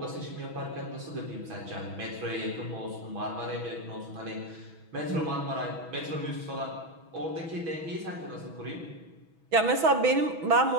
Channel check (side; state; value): left; late; 6.1 ms